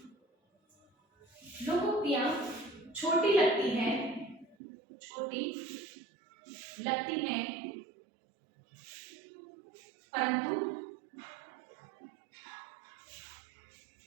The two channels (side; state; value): left; drops out; at 4.5 s